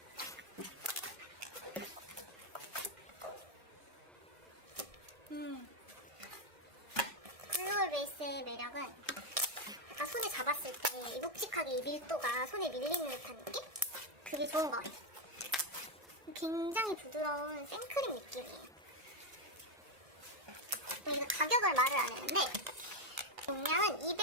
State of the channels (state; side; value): late; left; 1.6 ms